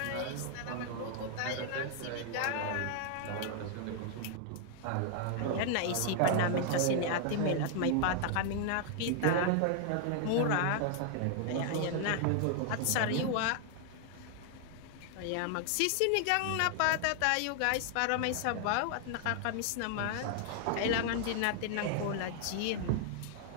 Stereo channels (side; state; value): both; different; correlation 0.00